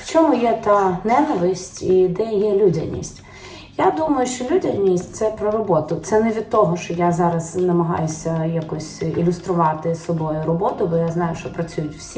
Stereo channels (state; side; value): identical; both; correlation 1.00